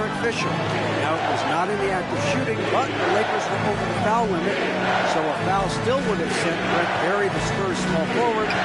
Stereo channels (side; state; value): both; identical; correlation 1.00